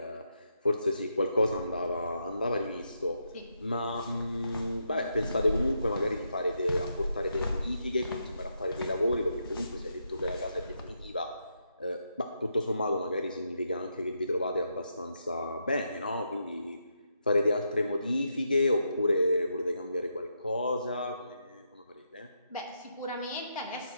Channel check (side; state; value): both; inverted; correlation -0.81